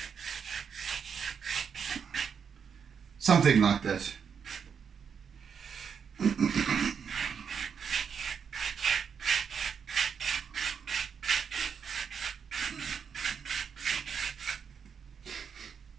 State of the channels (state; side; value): quieter; left; 6.9 dB